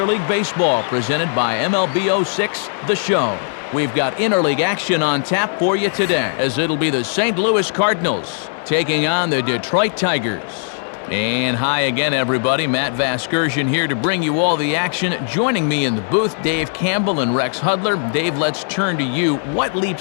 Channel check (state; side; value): silent; right; digital silence